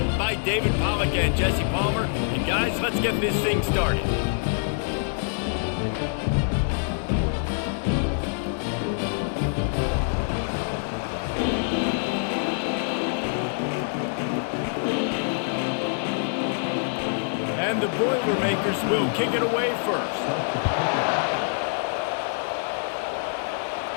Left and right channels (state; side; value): silent; right; digital silence